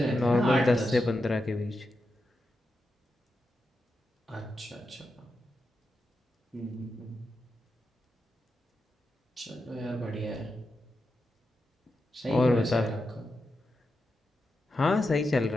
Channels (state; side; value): normal; both; correlation 0.88